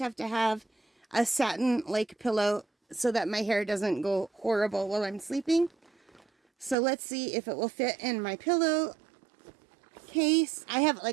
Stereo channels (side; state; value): left; drops out; at 6.8 s